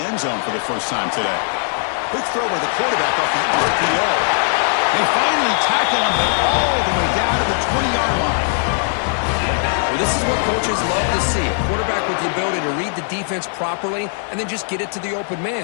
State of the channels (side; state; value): right; silent; 61 dB below the other